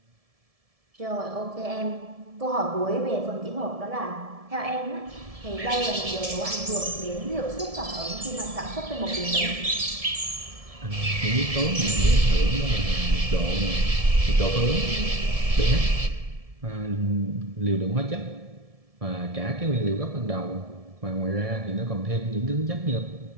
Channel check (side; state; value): left; late; 1.7 ms